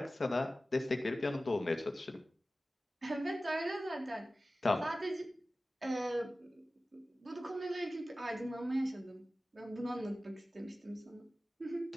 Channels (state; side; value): normal; both; correlation 0.96